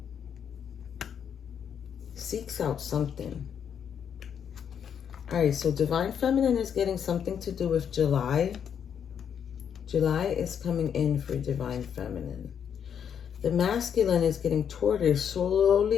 seeks out something. All right, so Divine Feminine is getting something to do with July. July is coming in for Divine Feminine. The Masculine is getting tortoise,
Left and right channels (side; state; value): right; quieter; 8.1 dB